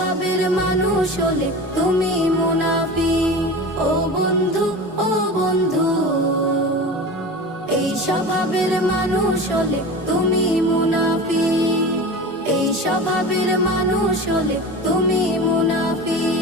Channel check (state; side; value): normal; both; correlation 0.32